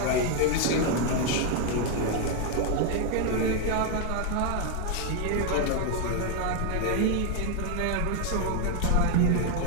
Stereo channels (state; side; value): different; both; correlation 0.01